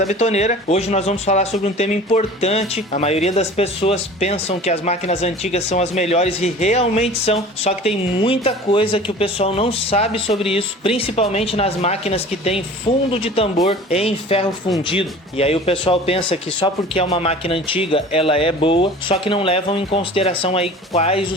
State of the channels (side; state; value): both; normal; correlation 0.42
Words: Betoneira. Hoje nós vamos falar sobre um tema importante. A maioria das pessoas pensam que as máquinas antigas são as melhores e realmente são, só que tem muita coisa que o pessoal não sabe sobre isso, principalmente nas máquinas que tem fundo de tambor em ferro fundido. E aí o pessoal pensa que só porque é uma máquina antiga ela é boa, só que não levam em consideração aí quais